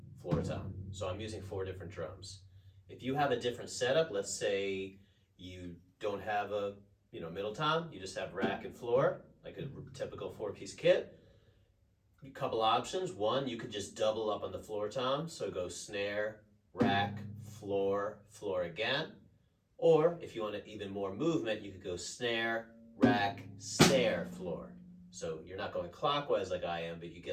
floor tom. So I'm using 4 different drums. If you have a different setup, let's say you don't have a middle tom, you just have rack and floor, like a typical 4-piece kit. A couple options. One, you could just double up on the floor tom, so go snare, rack, floor, floor again. Or if you want even more movement, you could go snare, rack, snare, floor. So you're not going clockwise like I am, but you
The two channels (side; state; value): both; identical; correlation 1.00